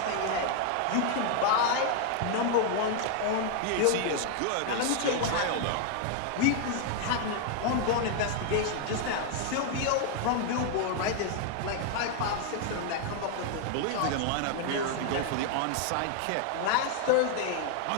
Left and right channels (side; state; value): both; different; correlation 0.00